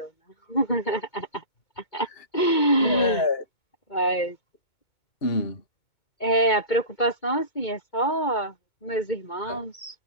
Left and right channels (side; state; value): right; late; 2.2 ms